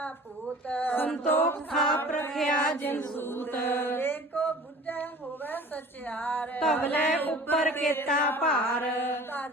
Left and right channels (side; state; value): both; normal; correlation 0.44